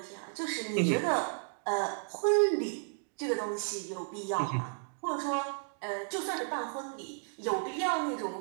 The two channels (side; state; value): left; silent; digital silence